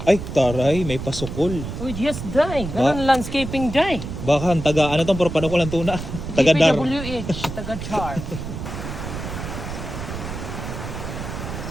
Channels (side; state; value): right; noise; rumble, 7 dB below the sound